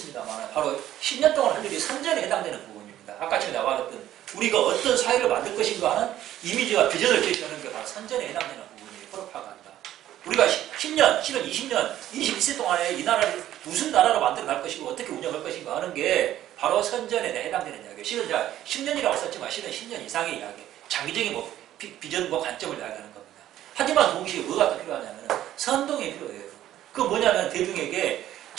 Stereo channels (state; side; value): quieter; left; 12.7 dB